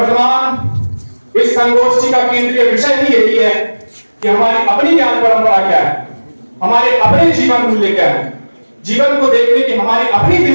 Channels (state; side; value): inverted; both; correlation -1.00